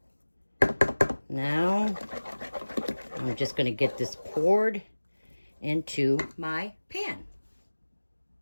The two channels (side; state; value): both; inverted; correlation -1.00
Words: Now, I'm just gonna get this poured into my pan.